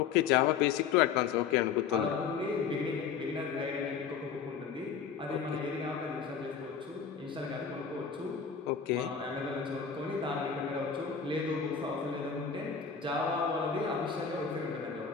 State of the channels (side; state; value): right; quieter; 6.7 dB